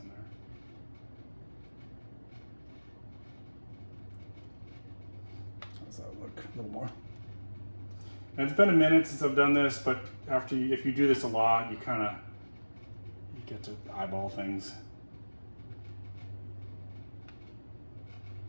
in there. How's that look? A little more. And it's been a minute since I've done this, but if you do this a lot, you get to eyeball things.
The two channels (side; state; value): both; inverted; correlation -1.00